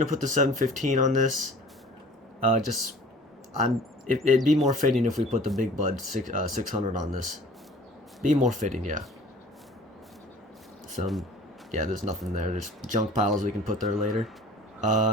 to put the 715 on this. It'd be more fitting if we put the Big Bud 600 on this. Be more fitting, yeah. Yeah, there's nothing there. There's junk piles we can put there later.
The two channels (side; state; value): both; normal; correlation 0.47